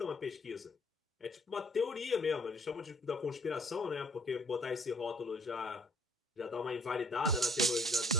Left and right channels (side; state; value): both; normal; correlation 0.60